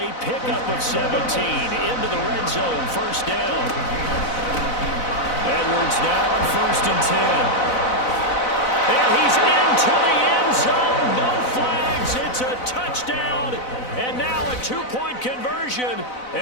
pickup of 17 into the red zone, first down. Edwards now on 1st and 10. And he's into the end zone, no flags, it's a touchdown, and now a two-point conversion,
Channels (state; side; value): late; right; 4.0 ms